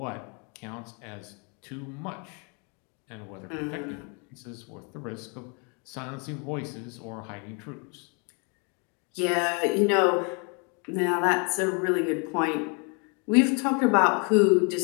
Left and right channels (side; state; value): right; quieter; 35.7 dB